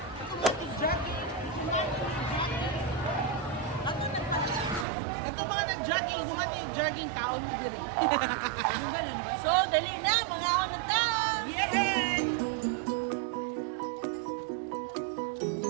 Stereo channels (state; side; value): drops out; left; at 4.9 s